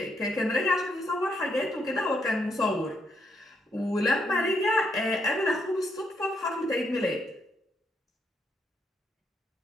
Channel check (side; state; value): both; normal; correlation 0.77